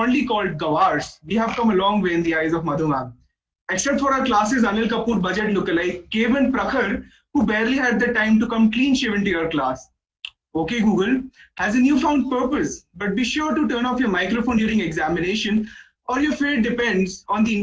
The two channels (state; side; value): identical; both; correlation 1.00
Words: called Gawars, we have come a long way in the eyes of Madhu ma'am. Except for our classes Anil Kapoor budget lookalike, Kevan Prakhar, who barely had the time to come clean shaven to your class. Okay, Google has a newfound purpose, but be sure to turn off your microphone during examination, or your fate depends on the